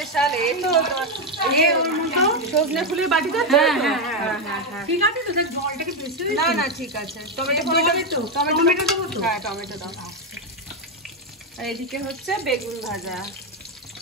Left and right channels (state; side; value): normal; both; correlation 0.06